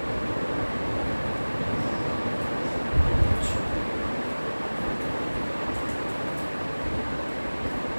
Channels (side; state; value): both; inverted; correlation -1.00